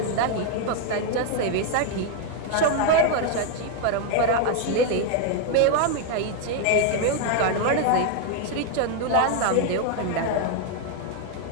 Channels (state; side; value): different; both; correlation 0.01